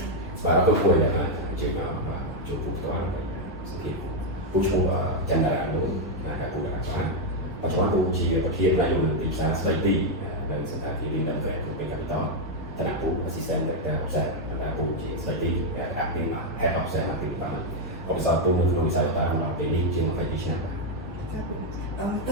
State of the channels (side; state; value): both; normal; correlation 0.01